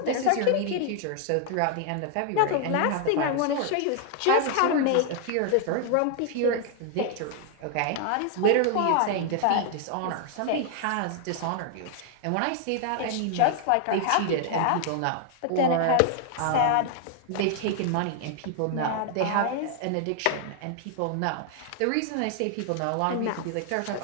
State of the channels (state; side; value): different; both; correlation 0.00